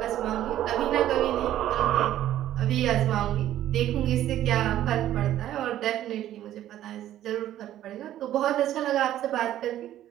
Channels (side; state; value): left; quieter; 12.5 dB